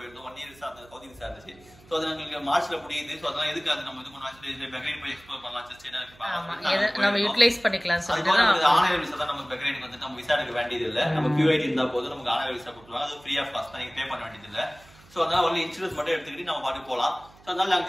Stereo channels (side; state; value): right; noise; hum, 25 dB below the sound